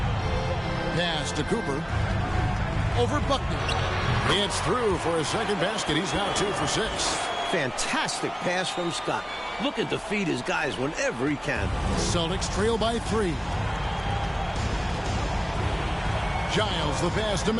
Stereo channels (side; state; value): both; identical; correlation 1.00